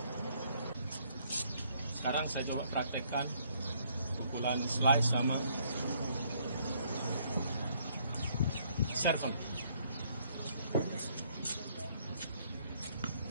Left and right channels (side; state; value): both; inverted; correlation -0.66